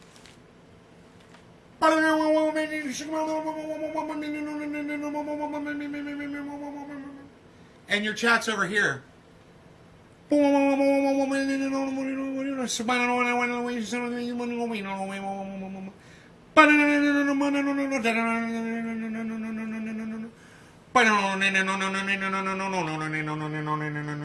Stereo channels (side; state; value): both; identical; correlation 1.00